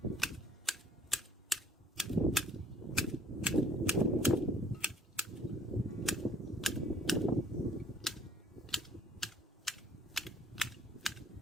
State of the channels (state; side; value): normal; both; correlation 0.57